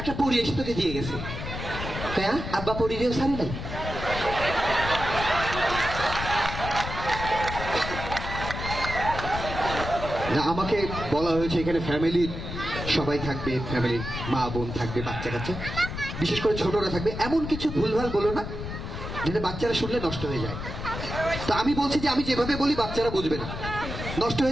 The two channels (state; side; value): noise; left; rumble, 7 dB below the sound